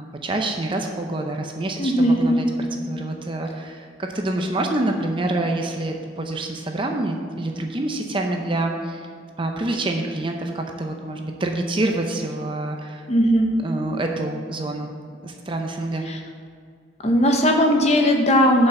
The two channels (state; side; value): normal; both; correlation 0.59